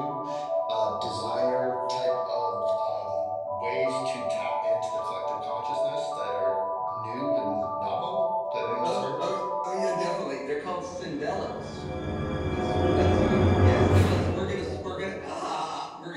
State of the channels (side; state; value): both; identical; correlation 1.00